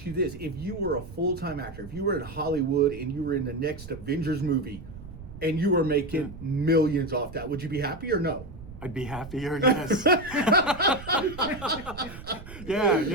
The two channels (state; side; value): noise; right; rumble, 14 dB below the sound